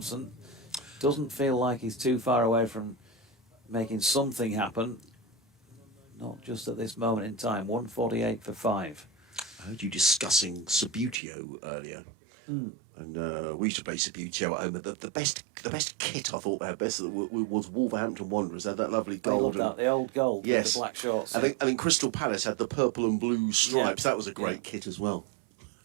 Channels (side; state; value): left; drops out; at 11.2 s